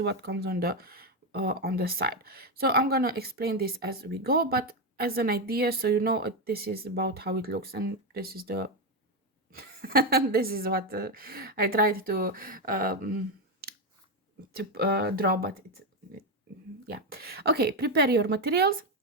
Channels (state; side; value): normal; both; correlation 0.08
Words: what comes on the side. So I'm gonna explain this as we go, but as an idea, so you know, this is about how it looks, and this is the this is what I tried to draw, but it's yeah. Okay, prepare your materials,